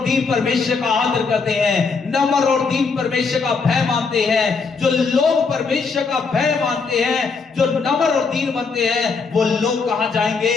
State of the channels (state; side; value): quieter; right; 4.8 dB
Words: दीन परमेश्वर का आदर करते हैं, नम्र और दीन परमेश्वर का भय मानते हैं। जो लोग परमेश्वर का भय मानते हैं, जो नम्र और दीन बनते हैं, वो लोग कहां जाएंगे,